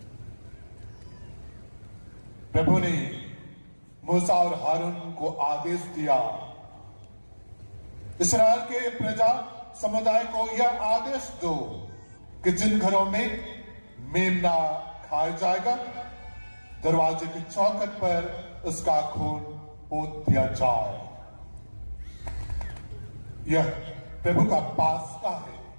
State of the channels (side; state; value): both; inverted; correlation -1.00